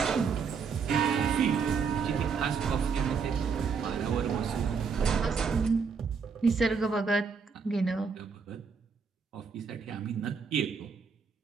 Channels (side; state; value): left; quieter; 5.7 dB